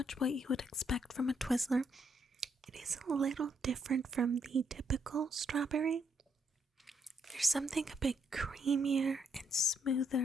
what you would expect from a Twizzler. It is a little different from the typical strawberry. There's something a bit creamier and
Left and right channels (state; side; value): normal; both; correlation 0.75